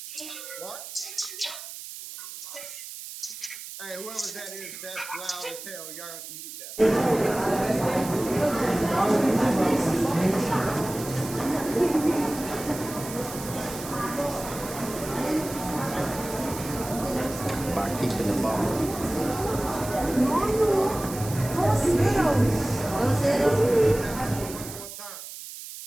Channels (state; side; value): noise; right; hiss, 11 dB below the sound